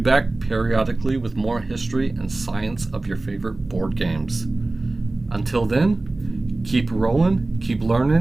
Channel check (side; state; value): left; quieter; 3.0 dB